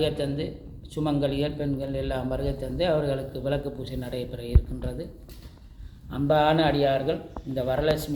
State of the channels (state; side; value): identical; both; correlation 1.00